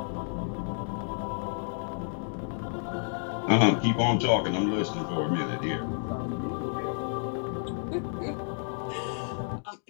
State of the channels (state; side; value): silent; right; digital silence